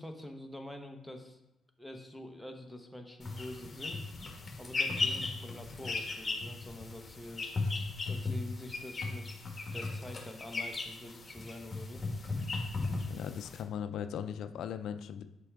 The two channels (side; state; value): right; quieter; 3.3 dB